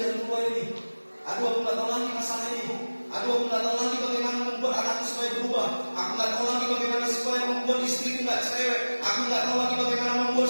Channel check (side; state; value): both; inverted; correlation -1.00